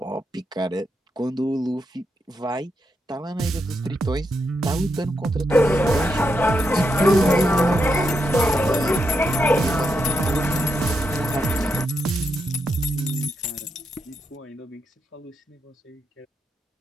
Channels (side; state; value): both; normal; correlation 0.83